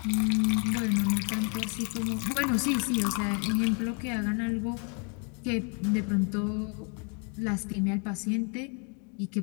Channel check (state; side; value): quieter; right; 37.3 dB